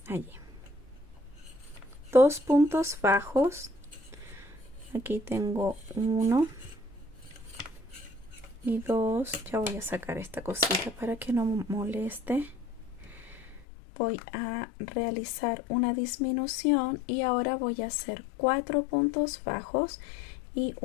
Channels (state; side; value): drops out; right; at 13.7 s